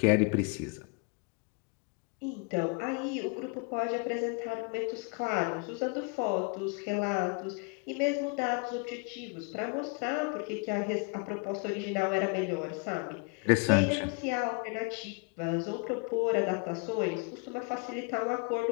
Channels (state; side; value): quieter; right; 33.7 dB